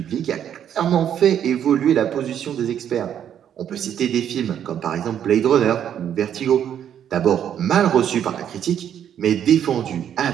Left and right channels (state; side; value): quieter; left; 9.5 dB